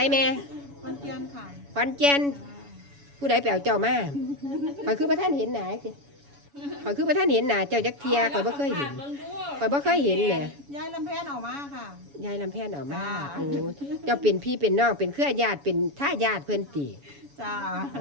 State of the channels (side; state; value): left; late; 7.1 ms